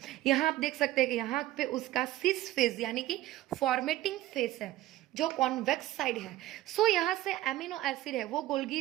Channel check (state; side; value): quieter; left; 15.2 dB